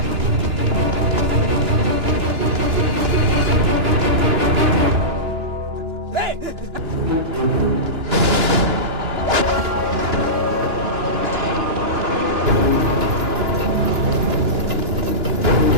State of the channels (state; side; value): late; left; 2.9 ms